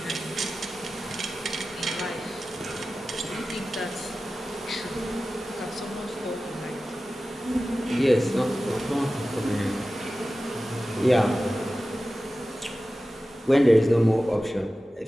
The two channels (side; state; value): both; normal; correlation 0.95